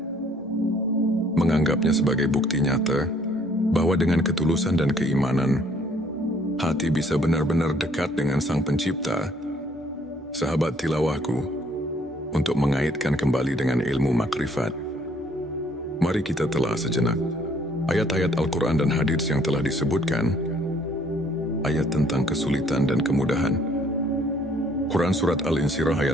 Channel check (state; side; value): normal; both; correlation 0.62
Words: menganggapnya sebagai bukti nyata bahwa dengan ketulusan dan keimanan, hati bisa benar-benar dekat dengan Sang Pencipta. Sahabat tilawahku, untuk mengaitkan kembali dengan ilmu makrifat, mari kita telah sejenak ayat-ayat Al-Quran dan hadits yang telah disebutkan. Ayat tentang kesulitan dan kemudahan. Quran Surat Al-Insyirah